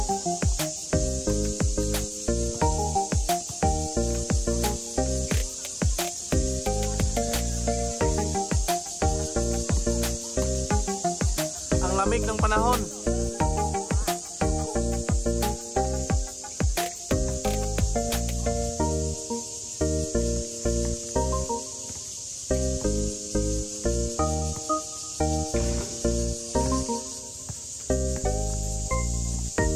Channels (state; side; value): identical; both; correlation 1.00